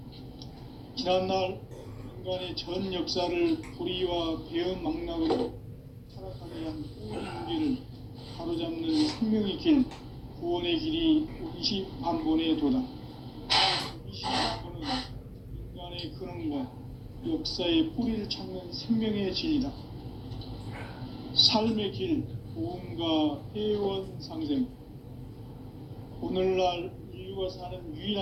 지난날 인간의 전 역사를 불의와 배은 망락으로 타락하게 한 모든 문제를 바로잡는 생명의 길, 구원의 길이 원시반본의 도다. 원시반본은 인간의 근원과 역사의 뿌리를 찾는 생명의 진리다. 삶의 길, 보험과 회원 상생. 오늘날 인류 태울주가 사는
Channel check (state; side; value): identical; both; correlation 1.00